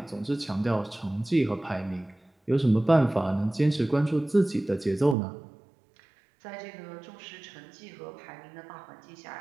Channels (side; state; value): left; drops out; at 5.2 s